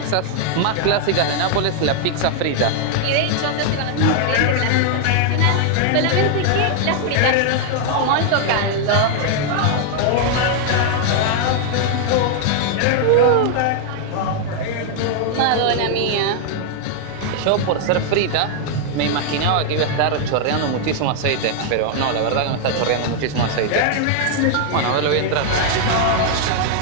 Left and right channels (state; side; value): different; both; correlation 0.00